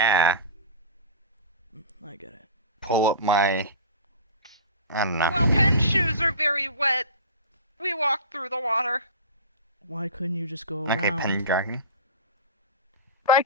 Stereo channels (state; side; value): inverted; both; correlation -0.33